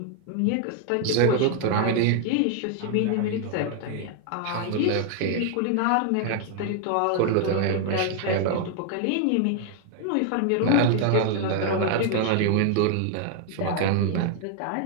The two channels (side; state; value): both; different; correlation 0.00